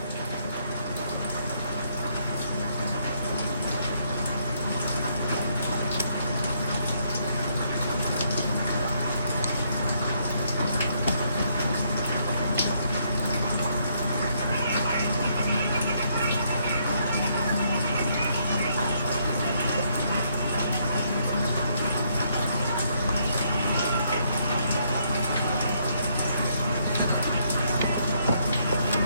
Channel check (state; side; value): inverted; both; correlation -0.71